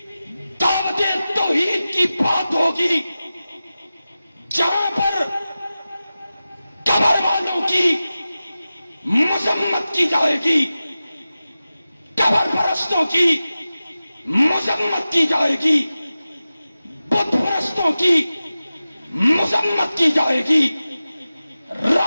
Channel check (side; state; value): both; inverted; correlation -0.95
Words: دعوت توحید کی بات ہوگی، جہاں پر قبر والوں کی مذمت کی جائے گی، قبر پرستوں کی مذمت کی جائے گی، بت پرستوں کی مذمت کی جائے گی،